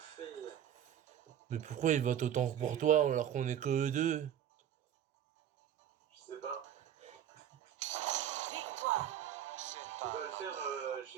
Mais pourquoi ils votent autant pour toi alors qu'on est que deux? Je sais pas. Victoire. Je peux pas le faire,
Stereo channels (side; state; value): left; quieter; 10.3 dB